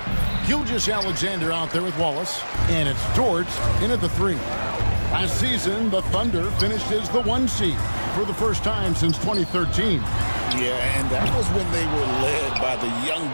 Gilgeous-Alexander out there with Wallace. And it's George in at the 3. Last season, the Thunder finished as the 1 seed for the first time since 2013. Yeah, and that was when they were led by the young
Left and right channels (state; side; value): inverted; both; correlation -1.00